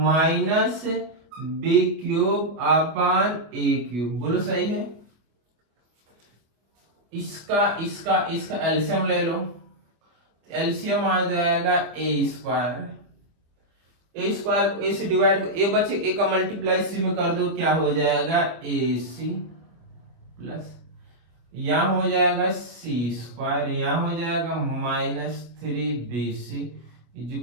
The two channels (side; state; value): left; late; 25 ms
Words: minus B cube upon A cube. बोलो सही है। इसका इसका इसका एलसीएम ले लो, एलसीएम आ जाएगा ए स्क्वायर। ए स्क्वायर को ए से डिवाइड, ए बचे ए का मल्टीप्लाई सी में कर दो, क्या हो जाएगा ए सी प्लस यहां हो जाएगा सी स्क्वायर, यहां हो जाएगा minus 3bc is